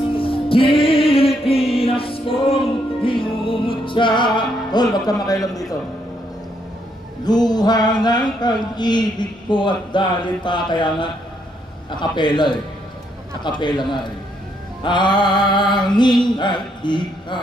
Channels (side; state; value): both; normal; correlation 0.74